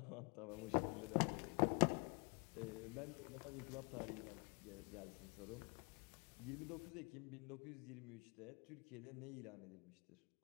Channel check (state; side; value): quieter; right; 32.8 dB